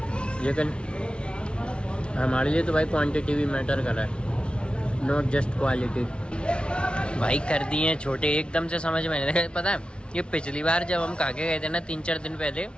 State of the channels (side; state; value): right; late; 0.057 ms